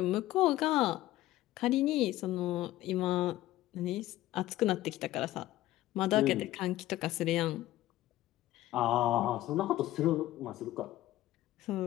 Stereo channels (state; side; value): quieter; right; 15.5 dB